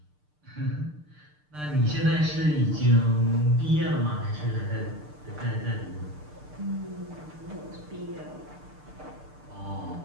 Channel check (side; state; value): left; late; 6.7 ms